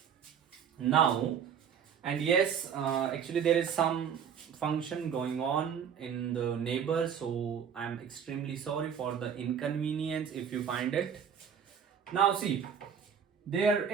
now. And yes, actually there is some function going on in the neighbor, so I'm extremely sorry for the inconvenience if you find it. Now see, there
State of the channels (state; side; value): quieter; left; 7.7 dB